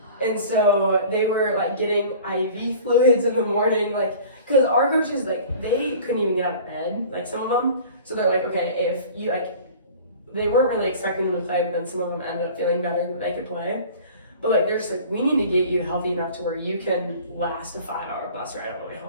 And so they were like getting IV fluids in the morning, like, because our coaches, like, they couldn't even get out of bed, like some of them. So they're like, okay, if you like, they weren't really expecting them to play, but then some of them ended up feeling better that they could play. But like, they're just like, we need to get you healthy enough to where you can last a 5-hour bus ride on the way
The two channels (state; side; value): inverted; both; correlation -0.43